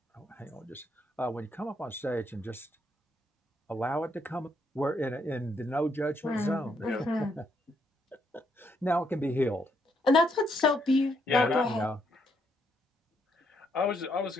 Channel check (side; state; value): both; normal; correlation 0.75